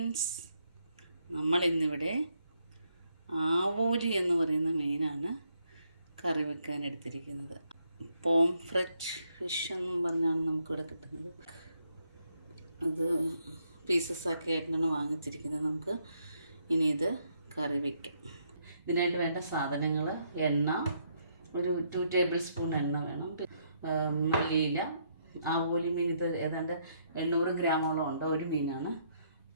നമ്മളിന്നിവിടെ ആവോലി എന്ന് പറയുന്ന മീനാണ് കറി വെക്കാൻ എടുത്തിരിക്കുന്നത്. പോംഫ്രെറ്റ് ഫിഷ് എന്നും പറഞ്ഞാണ് നമുക്കിവിടെ കിട്ടുന്നത്. അത് പീസസ് ആക്കി ആയിട്ടാണ് വാങ്ങിച്ചിരിക്കുന്നത്. നമുക്ക് ഇനി ഇത് കറി വയ്ക്കാം. ഇതിനായിട്ട് വേണ്ട സാധനങ്ങൾ: എണ്ണ, ഒരു 2 ടേബിൾ സ്പൂൺ എണ്ണ വേണം, മല്ലിയില. ആവോലി മീൻ ഇത് ഏതാണ്ട് 800 ഗ്രാമോളം ഉണ്ട്, ഒരു മീനാണ്.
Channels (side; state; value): both; inverted; correlation -0.74